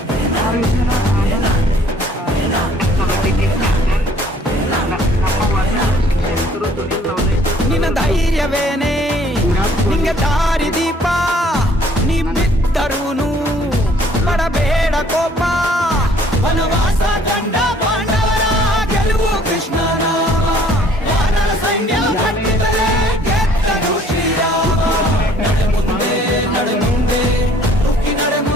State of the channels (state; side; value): normal; both; correlation 0.58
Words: ನಿನ್ನ ಧೈರ್ಯವೇನೆ ನಿಂಗೆ ದಾರಿ ದೀಪ, ನೀ ಬಿದ್ದರೂನು ಪಡಬೇಡ ಕೋಪ. ವನವಾಸ ಕಂಡ ಪಾಂಡವರ ಗೆಲುವು ಕೃಷ್ಣ ನಾಮ, ವಾನರ ಸೈನ್ಯ ಕಟ್ಟಿದರೆ ಗೆದ್ದನು ಶ್ರೀರಾಮ. ನಡೆ ಮುಂದೆ ನಡೆ ಮುಂದೆ ನುಗ್ಗಿ ನಡೆ